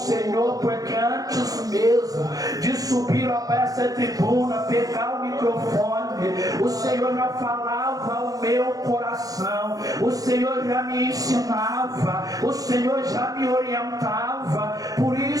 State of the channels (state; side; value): late; left; 0.17 ms